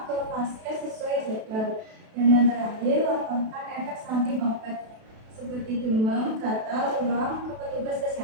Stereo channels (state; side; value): late; left; 32 ms